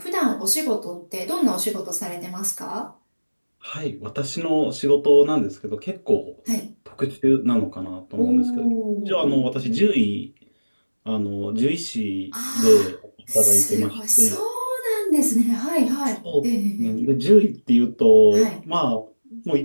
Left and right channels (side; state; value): both; inverted; correlation -1.00